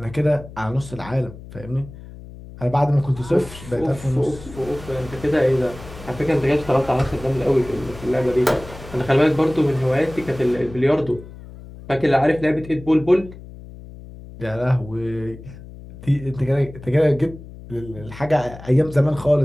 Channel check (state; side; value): noise; left; hum, 16 dB below the sound